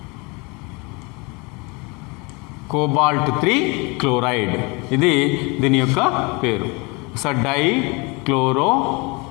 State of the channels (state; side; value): quieter; right; 27.9 dB